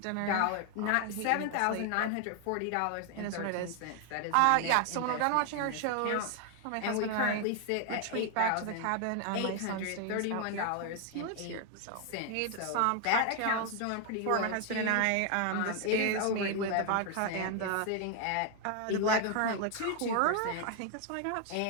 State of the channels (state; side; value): different; both; correlation 0.00